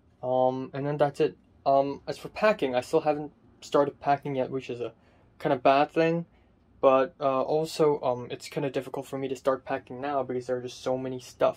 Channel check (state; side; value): identical; both; correlation 1.00